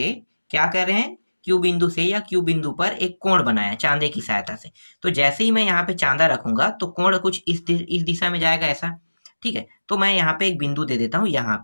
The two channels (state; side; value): inverted; both; correlation -1.00